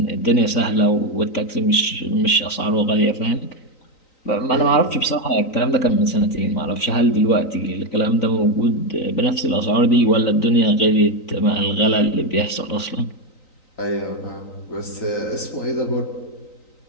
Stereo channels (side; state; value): right; late; 3.9 ms